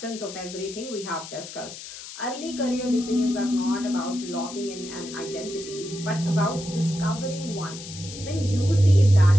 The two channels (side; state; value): left; noise; hiss, 12 dB below the sound